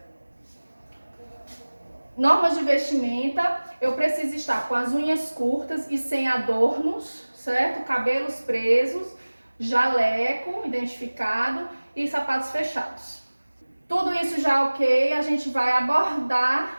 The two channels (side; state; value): both; inverted; correlation -1.00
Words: Normas de vestimenta: eu preciso estar com as unhas curtas e sem adornos, certo? Cabelos presos, jaleco identificado e sapatos fechados. Tudo isso já ok, a gente vai